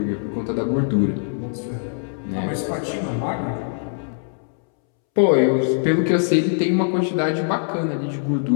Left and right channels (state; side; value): silent; right; 64 dB below the other